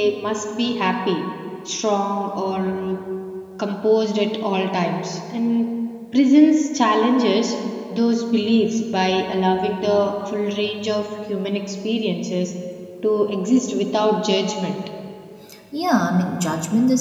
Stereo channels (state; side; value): identical; both; correlation 1.00